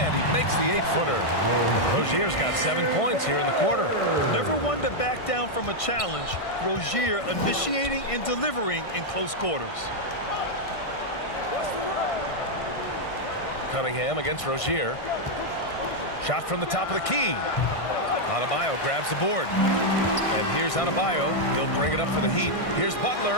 he makes the 8-footer. Rozier's got 7 points here in the quarter. Never one to back down from a challenge. Rozier initiating and delivering in close quarters. Cunningham against Rozier. Shot from the top of the key. Adebayo grabs the board. And here's Adebayo. He'll bring it up for the Heat. Here's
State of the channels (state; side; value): late; right; 1.6 ms